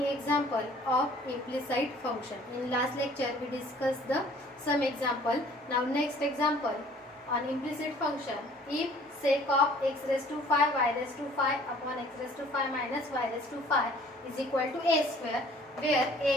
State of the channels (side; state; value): both; normal; correlation 0.54